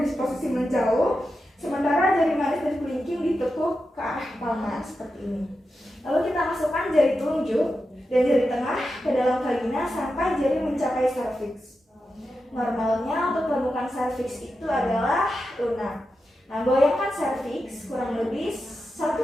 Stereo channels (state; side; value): normal; both; correlation 0.89